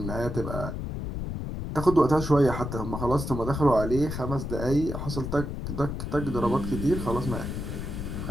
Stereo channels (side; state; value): left; noise; rumble, 5 dB below the sound